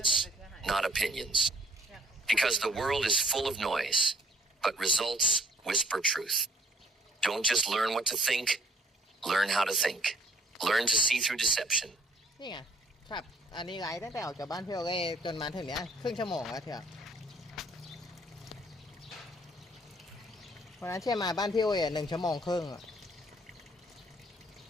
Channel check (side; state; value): both; normal; correlation 0.59